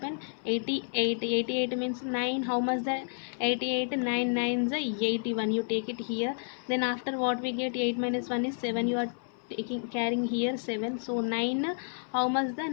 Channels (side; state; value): right; silent; 58 dB below the other